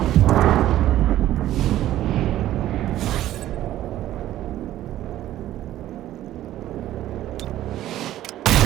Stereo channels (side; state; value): left; quieter; 13.5 dB